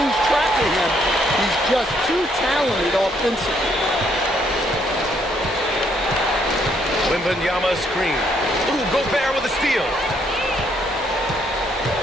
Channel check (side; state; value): both; normal; correlation 0.70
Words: lose track of him. He's just too talented offensively. Wembanyama screen. Ooh, Gobert with a steal.